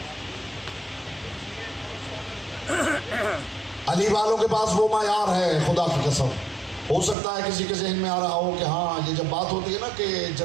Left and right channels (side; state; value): left; drops out; at 7.2 s